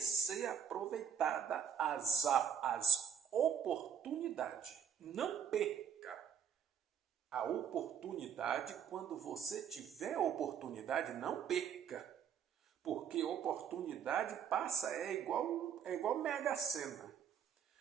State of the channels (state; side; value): quieter; left; 8.1 dB